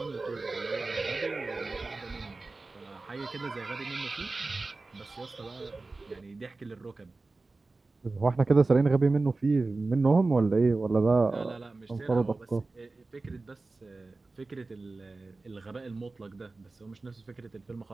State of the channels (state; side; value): quieter; left; 3.5 dB